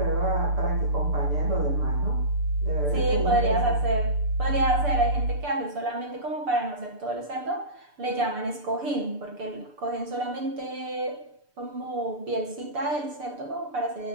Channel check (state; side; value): late; left; 6.8 ms